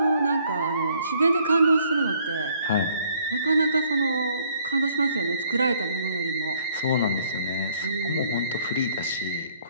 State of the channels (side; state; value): both; inverted; correlation -0.64